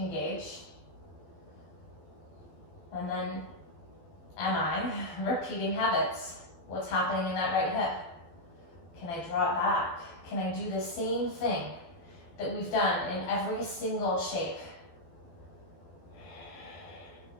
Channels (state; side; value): late; right; 12 ms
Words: And then, am I repeating habits? What's happening in that right hip? Can I draw it back? Can I do the same thing that we've done in every single shape?